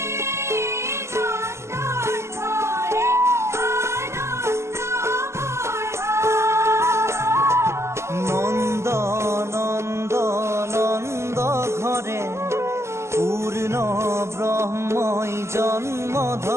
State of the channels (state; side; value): late; left; 0.13 ms